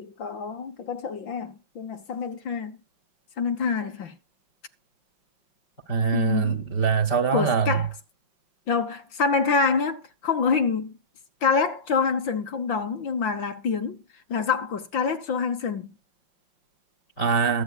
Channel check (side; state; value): right; late; 5.9 ms